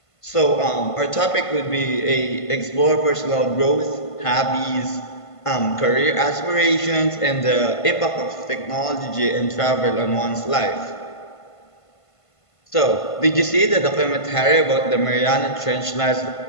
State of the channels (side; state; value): right; late; 1.5 ms